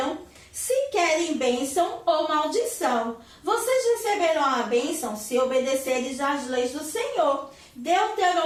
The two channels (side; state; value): both; identical; correlation 1.00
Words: se querem bênção ou maldição. Vocês receberão a bênção se obedecerem às leis do Senhor.